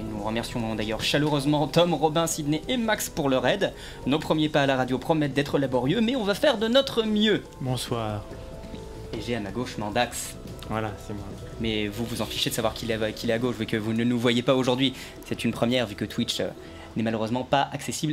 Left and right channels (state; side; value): identical; both; correlation 1.00